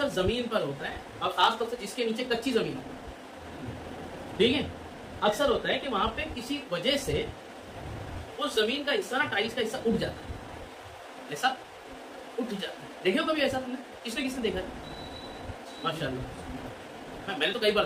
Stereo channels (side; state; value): both; identical; correlation 1.00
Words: زمین پر ہوتا ہے، اور خاص طور سے جس کے نیچے کچی زمین ہوتی ہے، ٹھیک ہے، اکثر ہوتا ہے کہ وہاں پہ کسی وجہ سے اس زمین کا حصہ نا، ٹائلس کا حصہ اٹھ جاتا ہے، ایسا اٹھ جاتا ہے، دیکھے ہو کبھی ایسا تم نے؟ کس نے دیکھا ہے؟ ماشاء اللہ، میں نے تو کئی بار